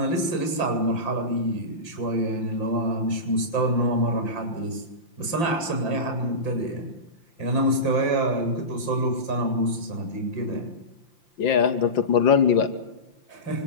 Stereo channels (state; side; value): late; right; 5.8 ms